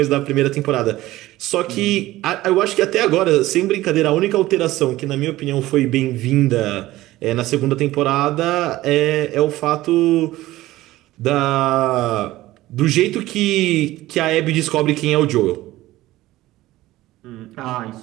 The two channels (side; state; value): left; quieter; 16.7 dB